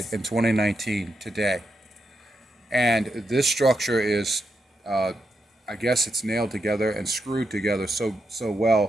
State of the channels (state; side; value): normal; both; correlation 0.84